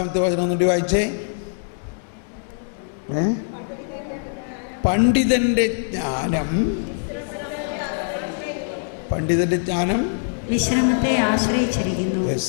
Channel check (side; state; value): right; silent; digital silence